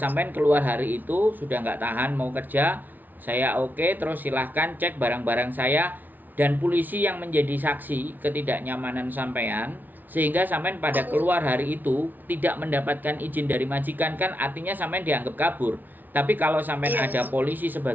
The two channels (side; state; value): left; late; 0.085 ms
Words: keluar hari itu sudah nggak tahan mau kerja. Saya oke, terus silahkan cek barang-barang saya dan polisi yang menjadi saksi ketidaknyamanan sampean. Sehingga sampean pada keluar hari itu tidak mendapatkan izin dari majikan kan artinya sampean dianggap kabur. Tapi kalau sampean ada polisi